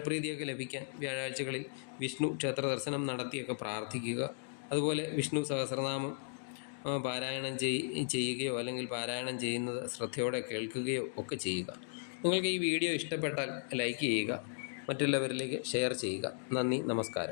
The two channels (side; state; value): right; silent; digital silence